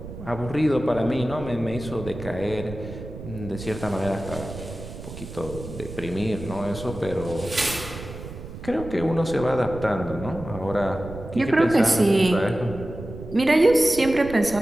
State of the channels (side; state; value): right; noise; rumble, 12 dB below the sound